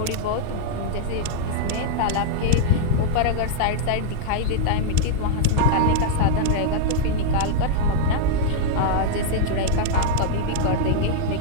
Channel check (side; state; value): both; different; correlation -0.01